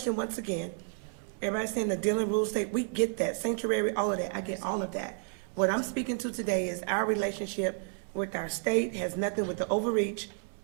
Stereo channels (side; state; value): left; silent; 57 dB below the other